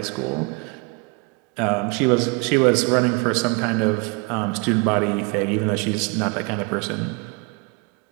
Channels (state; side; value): quieter; left; 28.8 dB